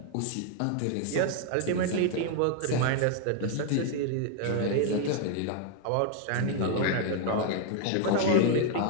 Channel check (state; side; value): different; both; correlation 0.01